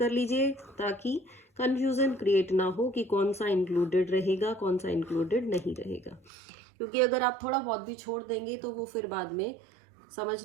लीजिए ताकि कंफ्यूजन क्रिएट ना हो कि कौन सा इंक्लूडेड रहेगा, कौन सा इंक्लूडेड नहीं रहेगा। क्योंकि अगर आप थोड़ा बहुत भी छोड़ देंगे तो वो फिर बाद में समझ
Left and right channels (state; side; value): drops out; left; at 6.3 s